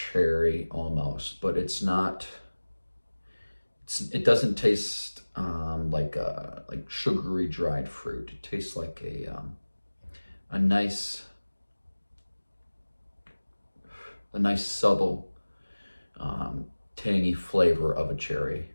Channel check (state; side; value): inverted; both; correlation -1.00